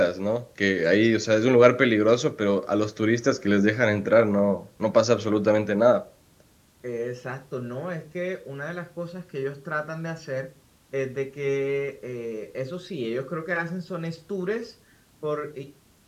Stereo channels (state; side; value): identical; both; correlation 1.00